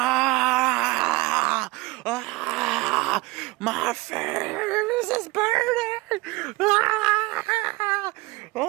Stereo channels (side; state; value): left; quieter; 22.1 dB